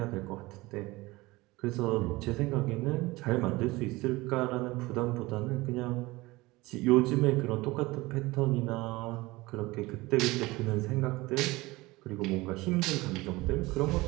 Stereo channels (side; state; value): left; quieter; 21.0 dB